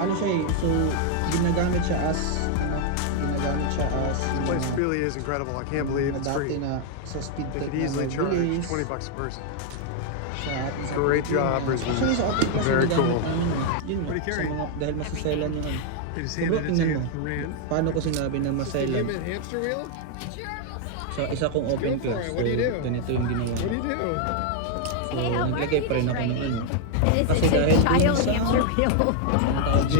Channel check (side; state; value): both; different; correlation 0.00